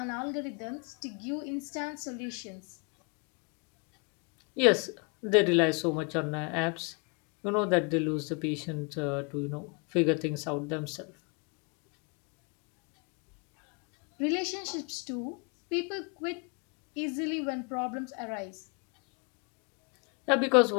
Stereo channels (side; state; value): right; quieter; 33.9 dB